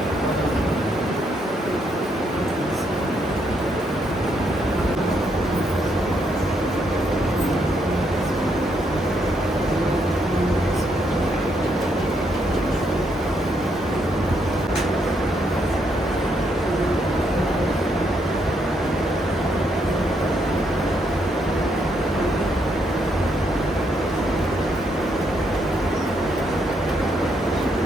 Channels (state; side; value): normal; both; correlation 0.75